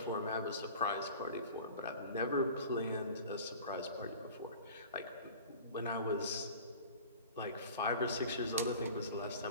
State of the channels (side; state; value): both; inverted; correlation -0.40